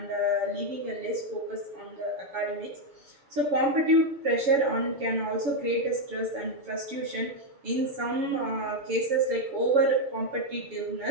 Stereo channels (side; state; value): left; late; 7.0 ms